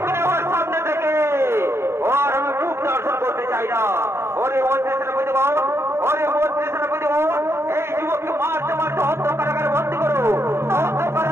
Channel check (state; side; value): late; left; 0.12 ms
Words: ওর সামনে থেকে ওর আমি মুখ দর্শন করতে চাই না। ওরে মন্ত্রী সেনাপতি বাবু, এই যুবককে মারতে অন্ধ কারাগারে বন্দি করো, অন্ধ